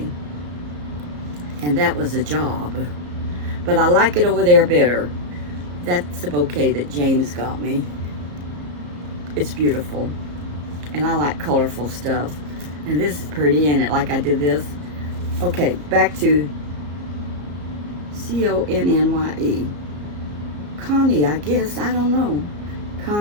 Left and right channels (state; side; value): late; left; 34 ms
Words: and that was a job. But I like it over there better. That's the bouquet that James got me. It's beautiful. And I like colorful stuff. And this is pretty, ain't it? Like I did this. Okay, back to C-O-N-N-Y-E. Connie, I guess. I don't know.